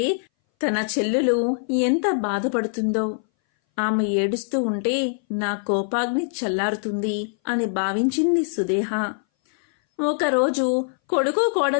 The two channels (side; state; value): right; silent; 61 dB below the other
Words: తన చెల్లెలు ఎంత బాధపడుతుందో. ఆమె ఏడుస్తూ ఉంటే నా కోపాగ్ని చల్లారుతుంది అని భావించింది సుదేహ. ఒకరోజు కొడుకు